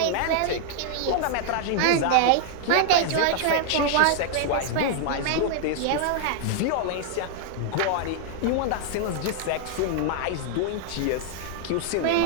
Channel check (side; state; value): both; different; correlation 0.00